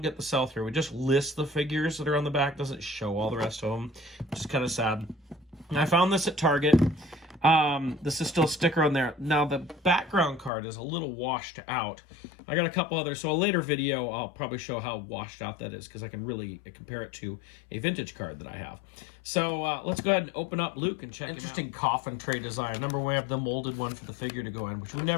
get the sell-through. We just list the figures that are on the back, doesn't show all the rest of them, which is kind of sad. And I found this at Target. This is still a sticker on there. Now, the background card is a little washed out. I got a couple others, so a later video I'll probably show how washed out that is, because I can really compare it to a vintage card that I have. So let's go ahead and open up Luke and check him out. Interesting coffin tray design. Remember, we have the molded one for the figure to go in, which we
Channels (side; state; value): right; drops out; at 10.5 s